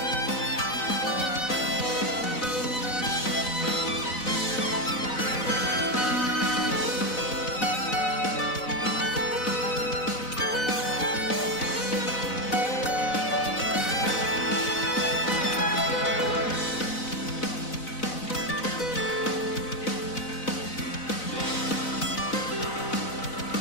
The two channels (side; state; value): right; late; 4.0 ms